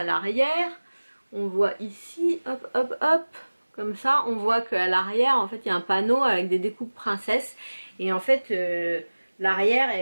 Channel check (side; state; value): both; inverted; correlation -1.00